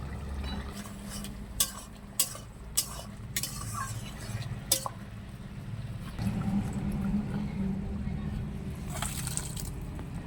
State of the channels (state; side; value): identical; both; correlation 1.00